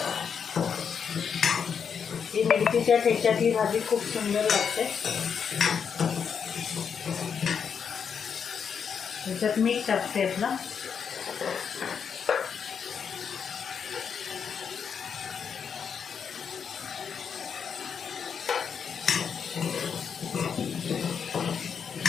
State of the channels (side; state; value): right; quieter; 6.9 dB